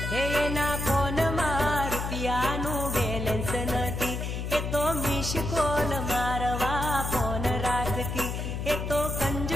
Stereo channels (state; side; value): noise; left; hum, 4 dB below the sound